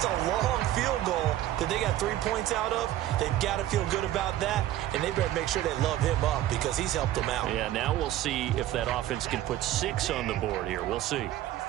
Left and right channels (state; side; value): quieter; left; 13.5 dB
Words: a long field goal that they got 3 points out of. They've got to feel good about that, and they better make sure they love him up because he's helped them out. Yeah, now we'll see if that offense can put 6 on the board here. We'll see.